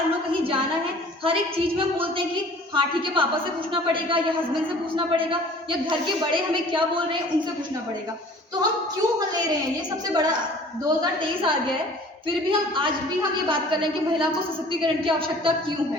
लो, कहीं जाना है, हर एक चीज़ में हम बोलते हैं कि हाँ ठीक है, पापा से पूछना पड़ेगा या हस्बैंड से पूछना पड़ेगा या घर के बड़े हमें क्या बोल रहे हैं उनसे पूछना पड़ेगा। तो हम क्यों ले रहे हैं, ये सबसे बड़ा 2023 आ गया है, फिर भी हम आज भी हम ये बात कर रहे हैं कि महिला को सशक्तिकरण की आवश्यकता क्यों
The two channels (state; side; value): normal; both; correlation 0.49